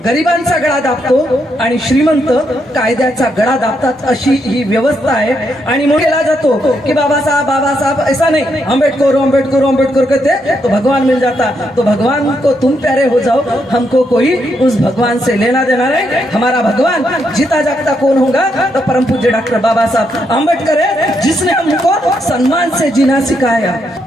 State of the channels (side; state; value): both; normal; correlation 0.78